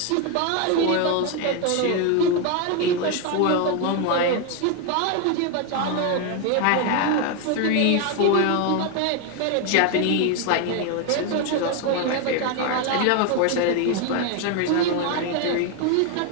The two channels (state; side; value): different; both; correlation 0.01